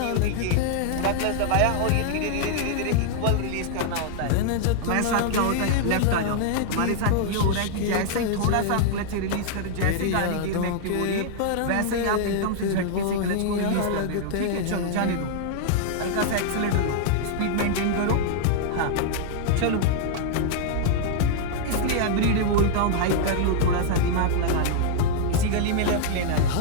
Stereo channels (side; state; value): both; different; correlation -0.01